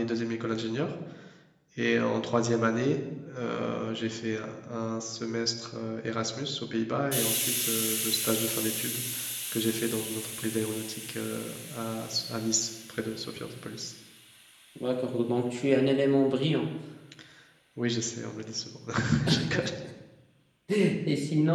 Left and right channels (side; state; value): both; identical; correlation 1.00